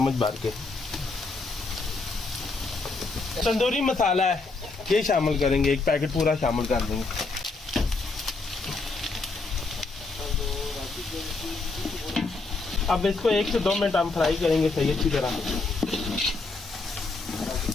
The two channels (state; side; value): quieter; right; 3.8 dB